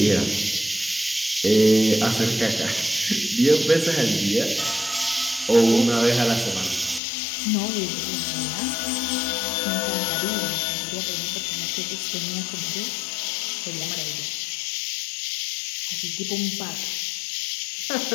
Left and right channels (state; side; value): drops out; right; at 7.0 s